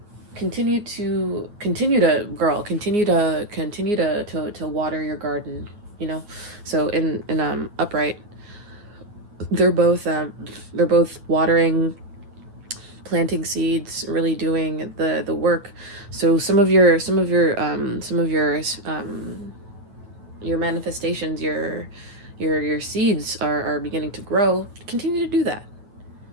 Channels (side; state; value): left; late; 9.2 ms